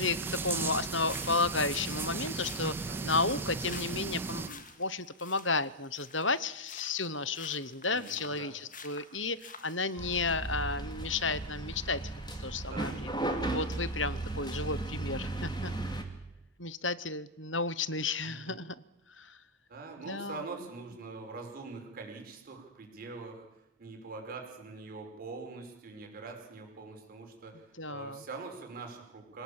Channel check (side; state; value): both; normal; correlation -0.04